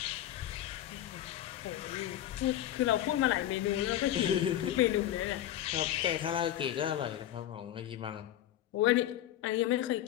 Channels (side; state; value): right; quieter; 12.4 dB